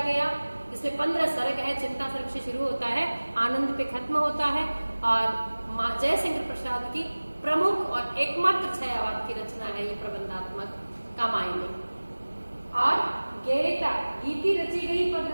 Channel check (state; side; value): inverted; both; correlation -1.00